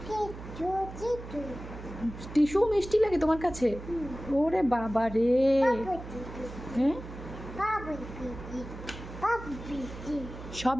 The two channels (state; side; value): noise; right; hum, 12 dB below the sound